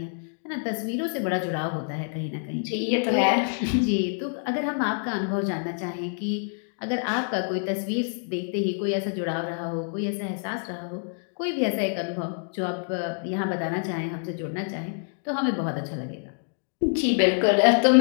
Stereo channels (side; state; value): right; silent; 60 dB below the other